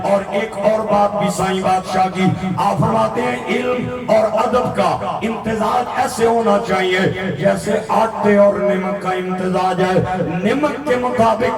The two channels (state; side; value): identical; both; correlation 1.00